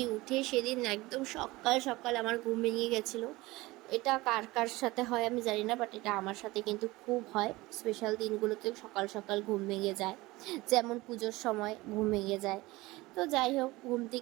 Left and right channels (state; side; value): quieter; left; 20.5 dB